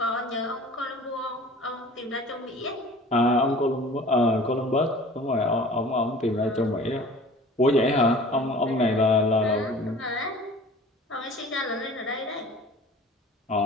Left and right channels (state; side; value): normal; both; correlation 0.45